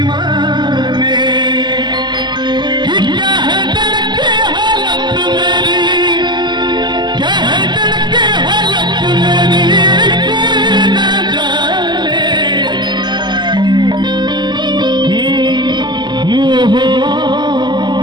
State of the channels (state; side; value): late; left; 0.21 ms